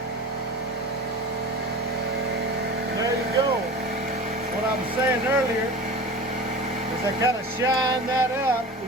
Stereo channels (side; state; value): both; normal; correlation 0.34